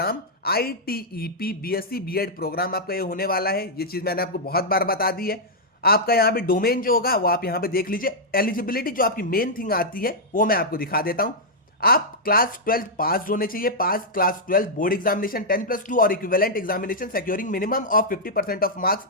ITEP BSc BEd program आपका ये होने वाला है। ये चीज मैंने आपको बहुत बार बता दी है। आपका यहाँ पे डोमेन जो होगा वो आप यहाँ पे देख लीजिए। एलिजिबिलिटी जो आपकी मेन थिंग आती है वो मैं आपको दिखा देता हूं। आप क्लास 12 पास होने चाहिए, पास क्लास 12 बोर्ड एग्जामिनेशन 10+2 और equivalent examination securing minimum of 50% of marks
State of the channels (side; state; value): both; normal; correlation -0.07